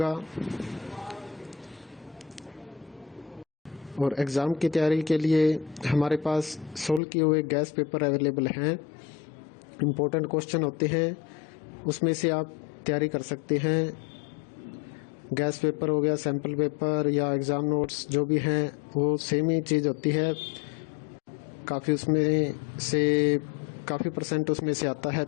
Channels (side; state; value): right; drops out; at 7.0 s